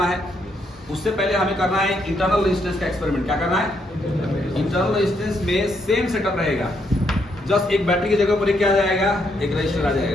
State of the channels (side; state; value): both; normal; correlation 0.76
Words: है। उससे पहले हमें करना है इंटरनल रेजिस्टेंस का एक्सपेरिमेंट। क्या करना है? इंटरनल रेजिस्टेंस में सेम सेटअप रहेगा, जस्ट एक बैटरी की जगह पर एक क्या आ जाएगा, एक रजिस्टर आ